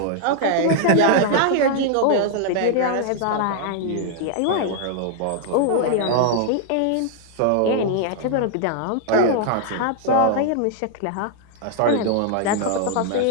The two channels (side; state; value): both; different; correlation 0.00